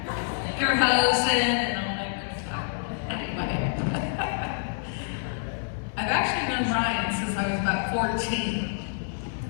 Your hosting and all that good stuff. Anyway. I've actually known Ryan since I was about 14.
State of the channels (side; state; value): right; silent; 59 dB below the other